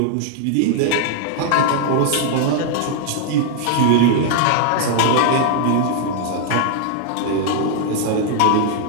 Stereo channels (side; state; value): both; different; correlation 0.00